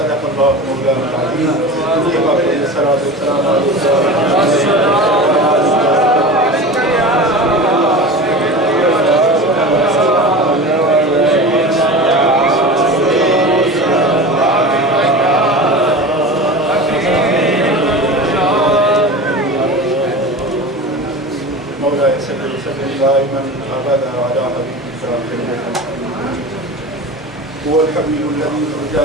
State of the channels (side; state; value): both; normal; correlation 0.32